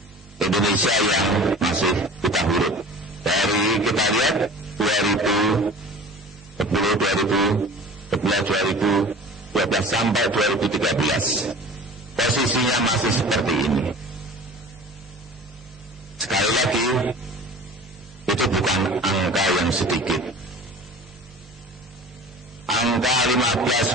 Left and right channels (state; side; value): normal; both; correlation 0.41